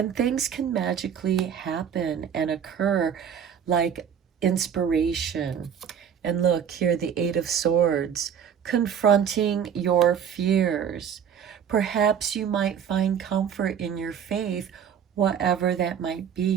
things can magically happen and occur, like inspiration. And look here, the Eight of Swords, confronting your fears. Perhaps you might find comfort in your faith, whatever that might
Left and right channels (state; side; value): quieter; left; 8.2 dB